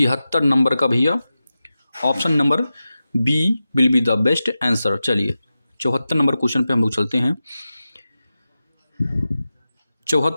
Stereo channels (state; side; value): inverted; both; correlation -0.93